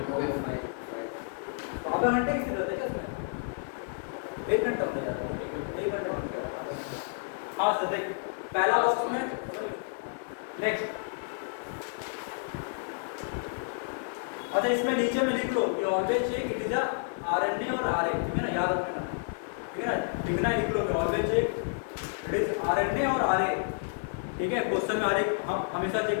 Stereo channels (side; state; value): right; silent; 58 dB below the other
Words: आधा घंटे की जरूरत है क्या इसमें? 1 घंटा हो जाएगा, 1 घंटा हो गया। हाँ सर देख पहला बॉक्स में नेक्स्ट। अच्छा इसमें नीचे में लिख लो कि always check it is a RNA और आरए, ठीक है ना, याद रखना, ठीक है ना, लिखना लिख लो कि always check it is RNA और आरए, ठीक है। क्वेश्चन में आरए हम हमेशा चेक